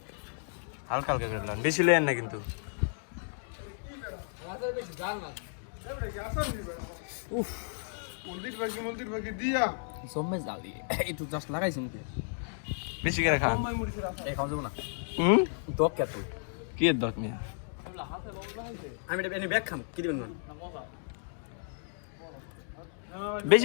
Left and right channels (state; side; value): silent; right; digital silence